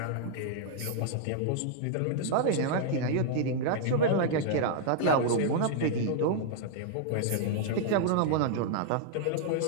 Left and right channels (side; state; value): both; different; correlation -0.01